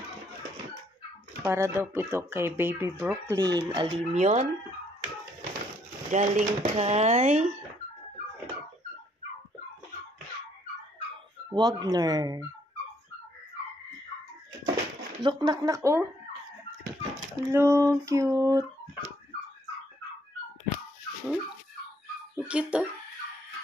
Para daw po ito kay Baby Brooklyn. Alim yun. Galing kay Wagner. Look, nak, oh. Hello, cute. Ang cute, oh.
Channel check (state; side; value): normal; both; correlation 0.68